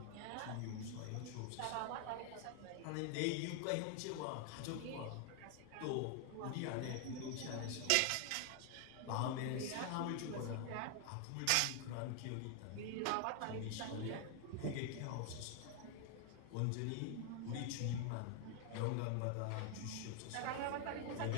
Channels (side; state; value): both; different; correlation 0.00